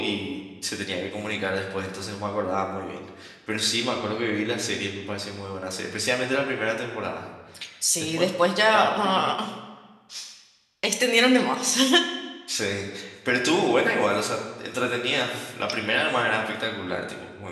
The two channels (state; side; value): identical; both; correlation 1.00